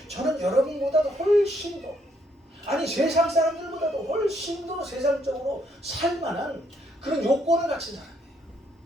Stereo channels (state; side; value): normal; both; correlation 0.71